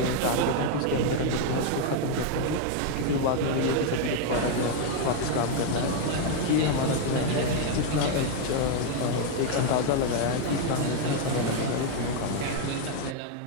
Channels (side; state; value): both; different; correlation 0.00